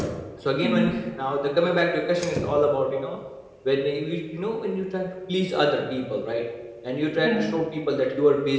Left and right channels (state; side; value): identical; both; correlation 1.00